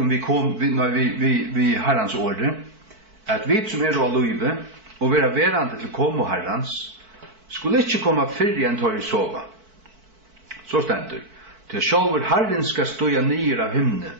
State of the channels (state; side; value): late; left; 4.5 ms